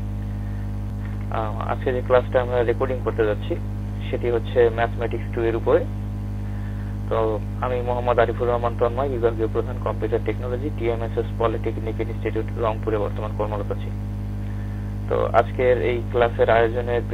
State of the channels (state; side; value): identical; both; correlation 1.00